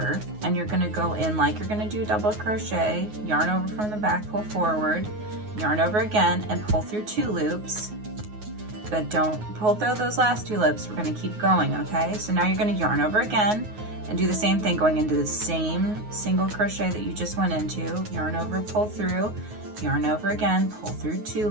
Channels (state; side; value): late; left; 9.4 ms